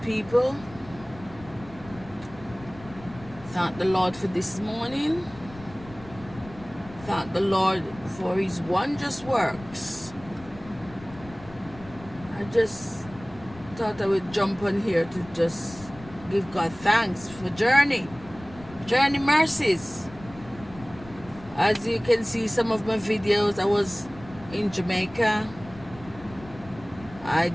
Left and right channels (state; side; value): noise; left; rumble, 18 dB below the sound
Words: Thank the Lord for this morning. Thank the Lord for His wondrous works. I just thought I would jump on here to just give God thanks for journey mercies. As you can see, some of my videos, I was in Jamaica. I